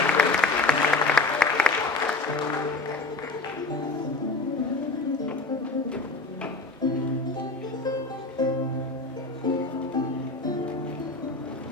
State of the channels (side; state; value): right; quieter; 3.4 dB